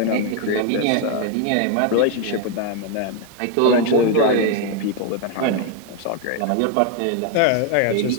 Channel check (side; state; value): both; different; correlation 0.01